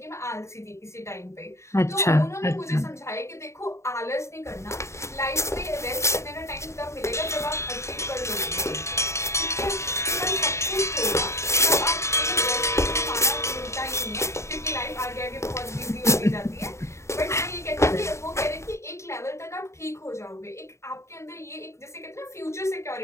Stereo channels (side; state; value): right; late; 0.14 ms